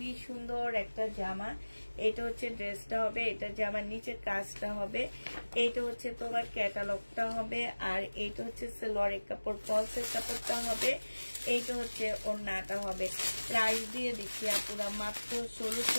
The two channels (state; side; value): inverted; both; correlation -1.00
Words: সুন্দর একটা জামা। এটা হচ্ছে ড্রেসটা হবে, এটা জামার নিচের কাজটা হবে। এইটা হচ্ছে তোমার ক্যাটালগটা হবে, আর এইটা হচ্ছে সালোয়ারের কাপড়, ফলসের কাপড়টা হবে। এইটা হচ্ছে ওন্নাটা হবে। প্রাইস দিয়ে দিচ্ছি আপুরা মাত্র